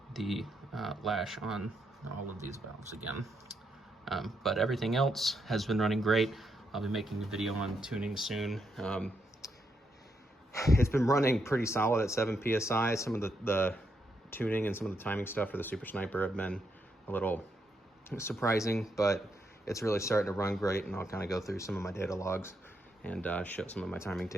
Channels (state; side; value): normal; both; correlation 0.79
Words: the lash on all of these valves again. But everything else has been running great. I'll be making a video on tuning soon. It's been running pretty solid at 7 PSI. Some of the tuning and some of the timing stuff for the Super Sniper have been a little surprising, but it's really starting to run great, and I'll kind of go through some of my data logs and show some of my timing